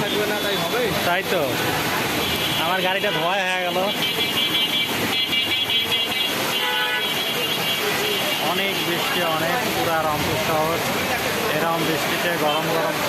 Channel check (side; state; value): both; identical; correlation 1.00